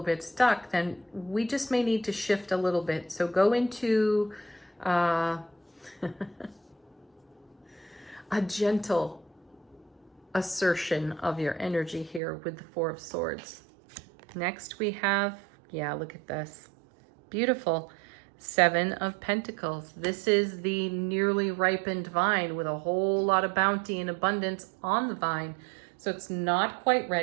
bit stuck, then we just may need to shift a little bit. So go into a gentle assertion of your energy here with the 4 of Swords. Next we have, look at this. Beautiful. 7 of Pentacles. This is the nearly ripened vine with a whole lot of bounty and abundance on the vine. So it's not quite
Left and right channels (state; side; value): drops out; left; at 12.2 s